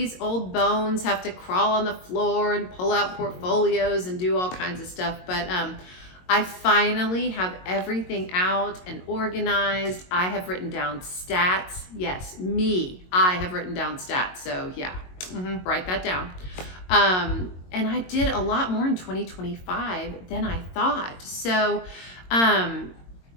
old bones have to crawl on the floor and pull out portfolios and do all kinds of stuff, but I finally have everything out and organized. I have written down stats. Yes, me. I have written down stats. So yeah, write that down. And I did a lot more in 2025 than I thought. So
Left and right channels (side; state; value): right; late; 22 ms